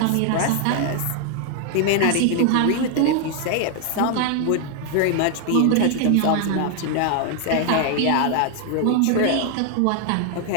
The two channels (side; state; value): both; different; correlation 0.00